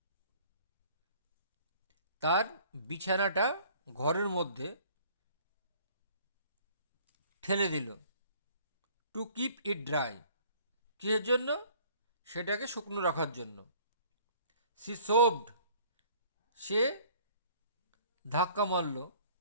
তার বিছানাটা ঘরের মধ্যে ঠেলে দিল। টু কিপ ইট ড্রাই, কিসের জন্য? সেটাকে শুকনো রাখার জন্য। সি সোভড, সে ধাক্কা মারল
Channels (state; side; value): inverted; both; correlation -0.54